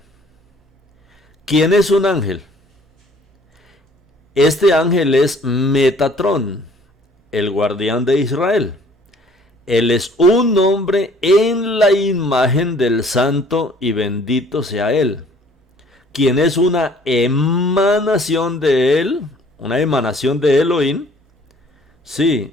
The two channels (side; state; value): both; normal; correlation 0.56